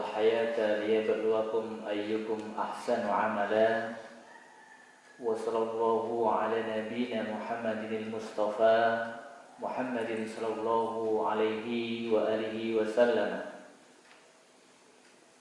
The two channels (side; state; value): both; identical; correlation 1.00